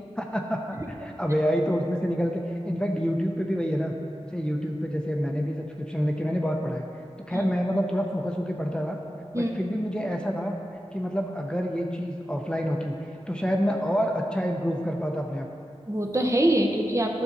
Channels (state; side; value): normal; both; correlation 0.91